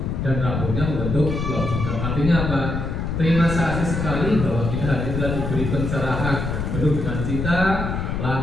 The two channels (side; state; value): left; noise; rumble, 2 dB below the sound